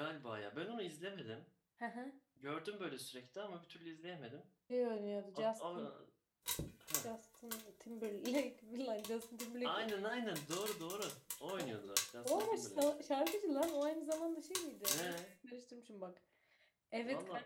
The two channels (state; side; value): identical; both; correlation 1.00